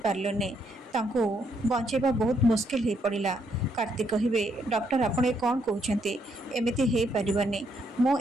ପାରିଲୁନି, ତାଙ୍କୁ ବଞ୍ଚାଇବା ବହୁତ ମୁସ୍କିଲ ହୋଇପଡ଼ିଲା। କାର୍ତ୍ତିକ କହିବେ, ଡକ୍ଟର ଆପଣ ଏ କ'ଣ କହୁଛନ୍ତି? ଏମିତି ହୋଇପାରିବନି, ମୁଁ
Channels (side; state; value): both; normal; correlation 0.74